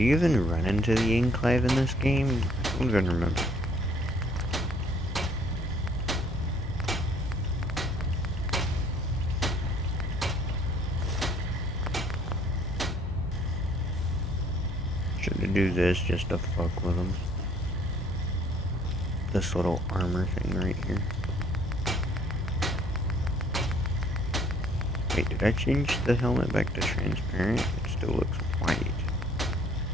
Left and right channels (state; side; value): normal; both; correlation 0.59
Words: you even run into the enclave in this game? I don't even remember. Should I do this just to fuck with them? This little armor thing right here. Wait, did I change the helmet back to transparent? It still looks white.